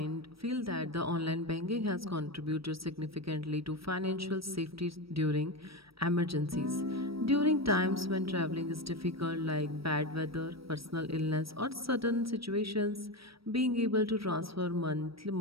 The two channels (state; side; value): late; left; 0.75 ms